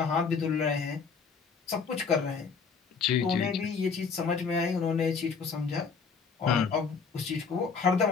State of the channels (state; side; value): quieter; right; 5.4 dB